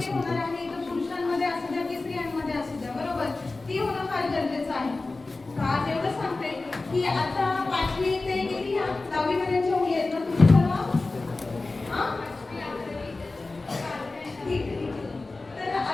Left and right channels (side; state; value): right; quieter; 3.4 dB